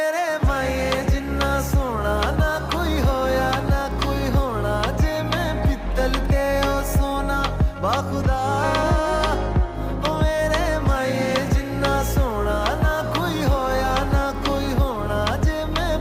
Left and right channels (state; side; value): identical; both; correlation 1.00